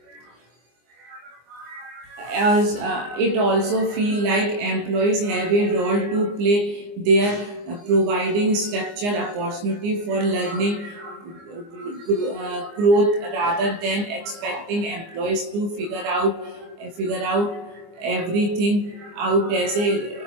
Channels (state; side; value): late; left; 24 ms